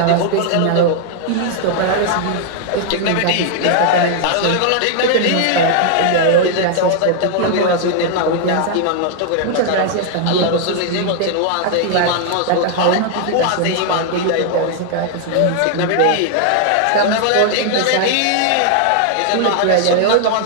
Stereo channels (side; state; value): both; different; correlation 0.00